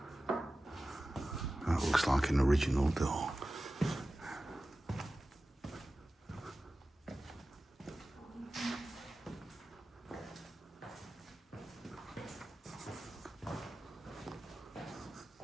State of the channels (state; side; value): normal; both; correlation 0.95